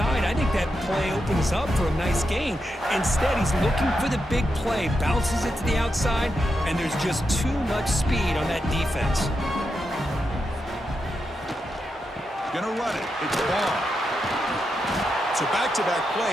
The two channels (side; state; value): both; normal; correlation 0.86